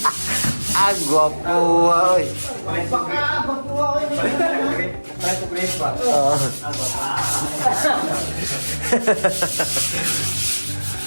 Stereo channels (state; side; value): inverted; both; correlation -1.00